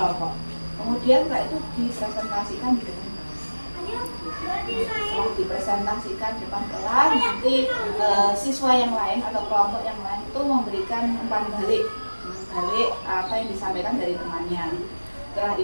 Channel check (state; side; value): inverted; both; correlation -1.00